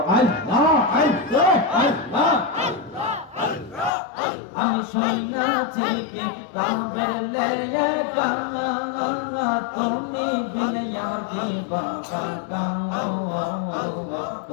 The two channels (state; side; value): drops out; right; at 3.9 s